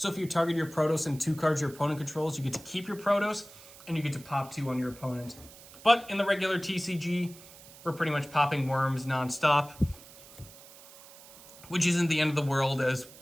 if you target your Protos and 2 cards your opponent controls, you get to keep your Protos, and you get to pop 2 on your opponent. But in the regular TCG, we're pretty much popping worms nonstop, which isn't the end of the world, as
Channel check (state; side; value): noise; right; hiss, 20 dB below the sound